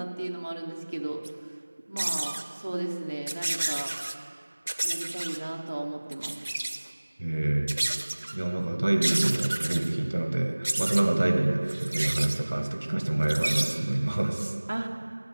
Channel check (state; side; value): inverted; both; correlation -1.00